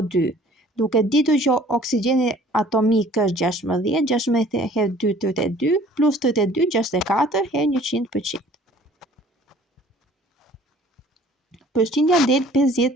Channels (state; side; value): normal; both; correlation 0.53